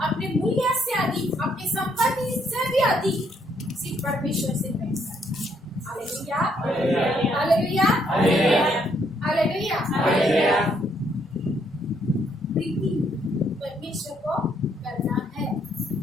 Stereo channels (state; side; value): normal; both; correlation 0.71